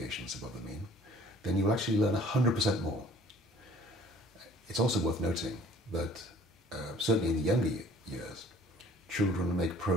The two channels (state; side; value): normal; both; correlation 0.53